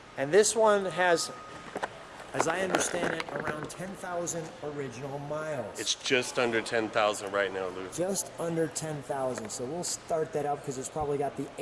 And this one has, as I understand it, around 10,000 original miles. It's just under 10,000 right now, Lou. Just under 10,000. So we'll start that up because it's probably got the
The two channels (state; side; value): identical; both; correlation 1.00